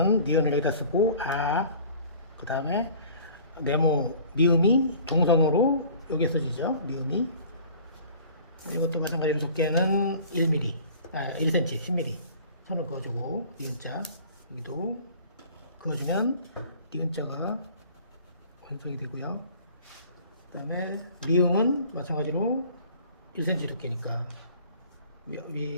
니은을 여기다 쓰고, 그 다음에 네모, 미음이 동성으로 여기에 써지죠. 미음이. 이것도 마찬가지로 두께는 1mm, 1cm, 10mm 선을 그어주고, 니은자, 여기도 그어주면 니은자가 완성이 되고요. 그 다음에 미음은 마찬가지로 1cm 두께니까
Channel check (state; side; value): inverted; both; correlation -0.48